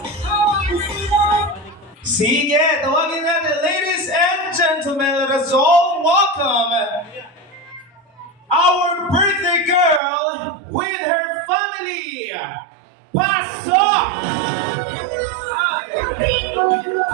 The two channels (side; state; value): left; drops out; at 10.0 s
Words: wanna see that. Sige, tawagin natin, ladies and gentlemen, let us all welcome our birthday girl with her family. Pasok!